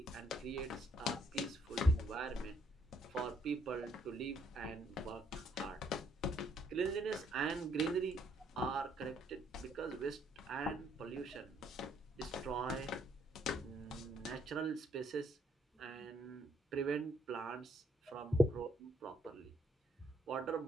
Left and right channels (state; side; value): normal; both; correlation 0.69